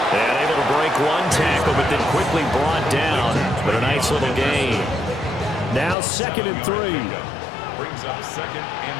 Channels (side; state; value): right; drops out; at 6.0 s